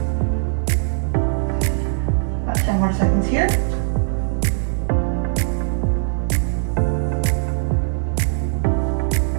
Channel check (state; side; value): silent; left; digital silence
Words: About 10 more seconds here.